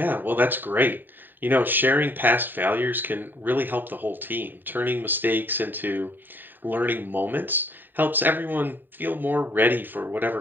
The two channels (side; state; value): left; late; 0.092 ms